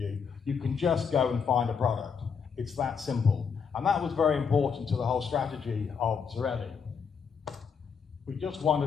You can just go and find a product. It's that simple. And that was very important to the whole strategy of Zarelli. We just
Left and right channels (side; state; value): right; quieter; 6.2 dB